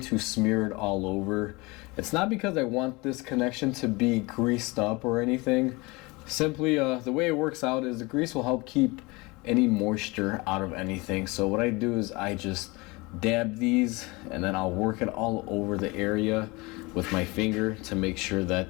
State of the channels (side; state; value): right; quieter; 24.7 dB